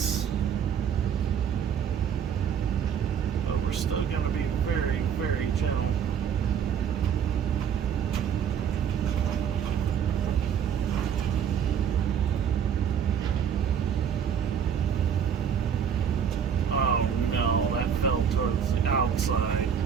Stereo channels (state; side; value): quieter; left; 7.9 dB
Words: but we're still going to be very, very gentle. Oh no, that fell towards the outside.